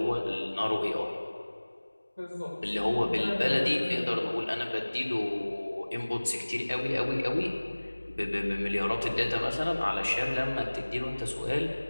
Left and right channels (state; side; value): inverted; both; correlation -1.00